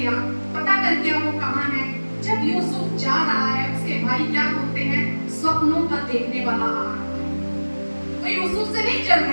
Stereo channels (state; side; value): inverted; both; correlation -1.00